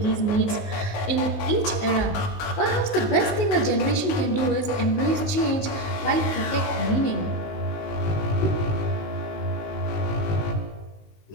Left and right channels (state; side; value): late; right; 19 ms